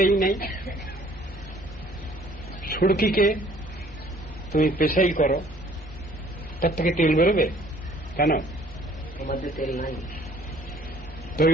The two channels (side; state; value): both; normal; correlation 0.57